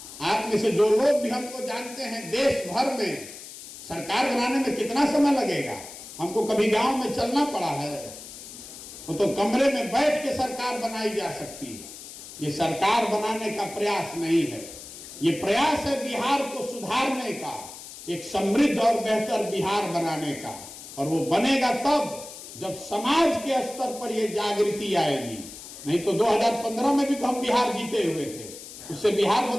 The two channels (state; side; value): noise; left; hiss, 14 dB below the sound